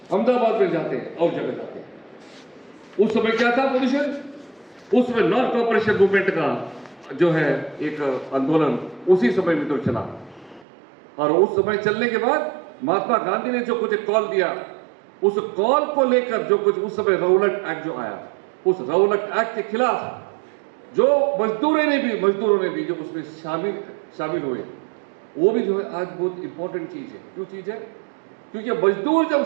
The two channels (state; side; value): drops out; left; at 10.7 s